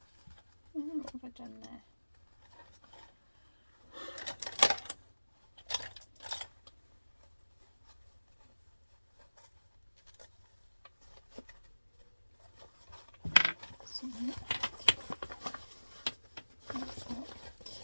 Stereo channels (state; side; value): inverted; both; correlation -1.00